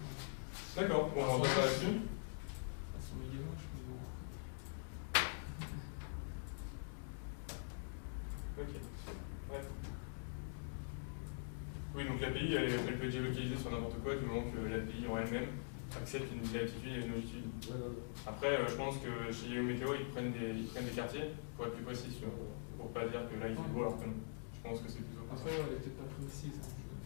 D'accord, bon, on va passer là-dessus. Elles sont méga moches, mais bon. Ok. Ouais. Oui, donc l'API, elle peut être géolocalisée sur n'importe quoi du moment que l'API en elle-même accepte une latitude et une longitude. Ouais, ouais. Après, je pense que chez Yahoo Météo, ils prennent des quartiers pour être plus précis, tu vois, pour pas dire que là il fait beau alors que non. Je pense que c'est plutôt comme ça. Après, ouais, elle est peut-être pas précise. Hein,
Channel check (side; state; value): right; silent; digital silence